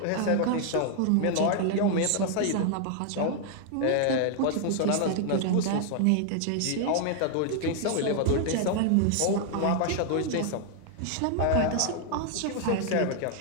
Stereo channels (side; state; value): both; different; correlation 0.00